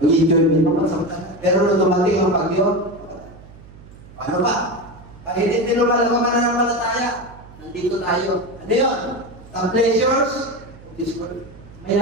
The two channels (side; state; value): right; noise; hum, 20 dB below the sound